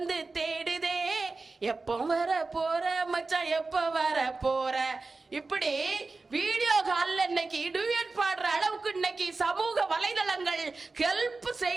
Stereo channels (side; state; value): left; quieter; 3.7 dB